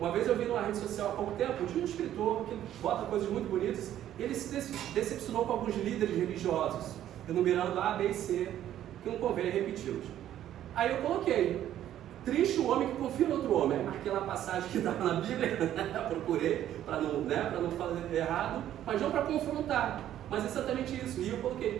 vez eu vi numa rede social há pouco tempo, de um escritor que bota coisas muito bonitas, ele se decepcionou com alguns líderes religiosos, enumerando A, B e C, que não convém repeti-los. Aí eu coloquei: triste o homem que confia no outro homem. Aí marquei lá a passagem que estava na Bíblia, procurei para não fazer errado, mas não para confrontar, mas exatamente isso. E eu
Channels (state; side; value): quieter; left; 11.7 dB